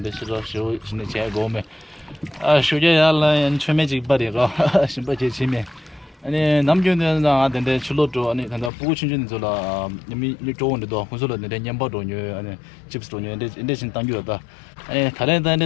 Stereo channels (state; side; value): drops out; right; at 8.7 s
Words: shiro shu shine che go me shuje yalla en cheme ji badi ra shimba je chime 아니 남교는 나한테 출로도 아니 단다 보고 친구는 저라 님이 좋은데도 혼술로 내 냠바도 녀 아니 집스도 녀 인데 신 당교다 아니 다른